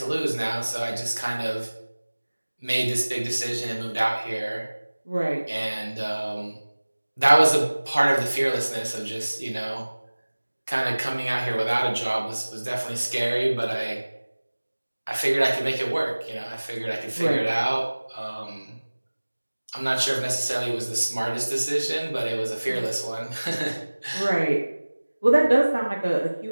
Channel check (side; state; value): both; inverted; correlation -1.00